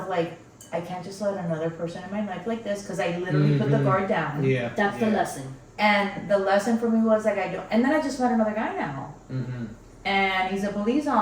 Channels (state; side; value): identical; both; correlation 1.00